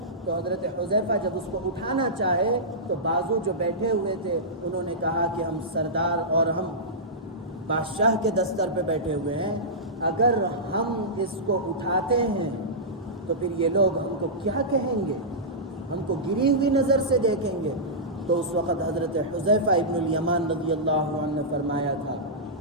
تو حضرت حذیفہ جب اس کو اٹھانا چاہے تو بازو جو بیٹھے ہوئے تھے انہوں نے کہا کہ ہم سردار اور ہم بادشاہ کے دستر پہ بیٹھے ہوئے ہیں، اگر ہم اس کو اٹھاتے ہیں تو پھر یہ لوگ ہم کو کیا کہیں گے، ہم کو گری ہوئی نظر سے دیکھیں گے۔ تو اس وقت حضرت حذیفہ ابن الیمان رضی اللہ عنہ نے فرمایا تھا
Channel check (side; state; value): both; normal; correlation -0.15